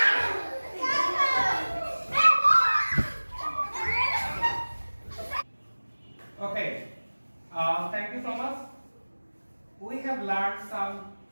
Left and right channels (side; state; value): both; inverted; correlation -1.00